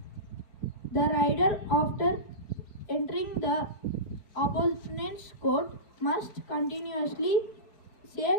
The rider, after entering the opponent's court, must continuously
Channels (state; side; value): late; right; 4.6 ms